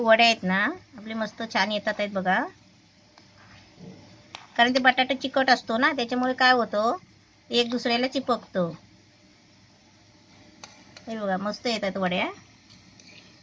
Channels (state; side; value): identical; both; correlation 1.00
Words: आहेत ना आपले मस्त छान येतात आहेत बघा. कारण ते बटाटा चिकट असतो ना, त्याच्यामुळे काय होतं एक दुसऱ्याला चिपकतो. हे बघा मस्त येतात वड्या.